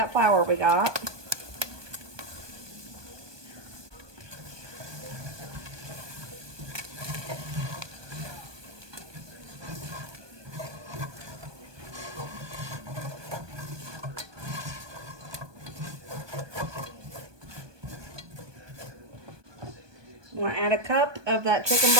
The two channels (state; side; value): late; left; 1.2 ms